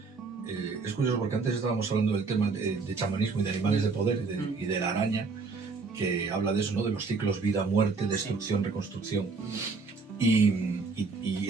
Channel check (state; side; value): quieter; left; 4.3 dB